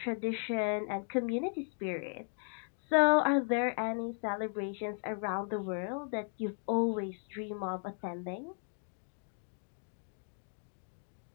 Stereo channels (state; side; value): silent; right; 54 dB below the other